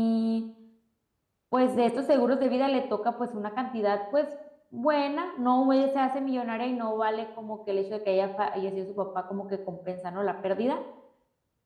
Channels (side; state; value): both; identical; correlation 1.00